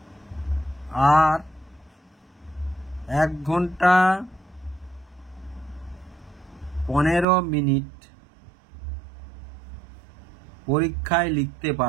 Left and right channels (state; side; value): drops out; left; at 7.2 s